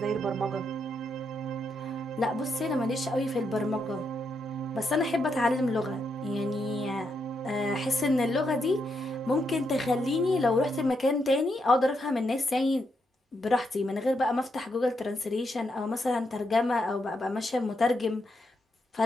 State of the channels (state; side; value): normal; both; correlation 0.80